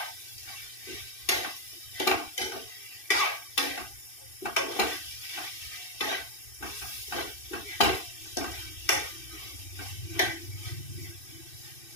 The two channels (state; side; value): late; right; 2.6 ms